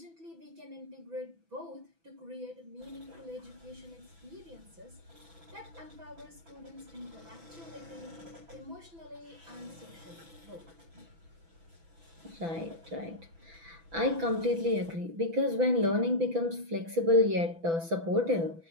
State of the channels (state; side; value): late; left; 6.0 ms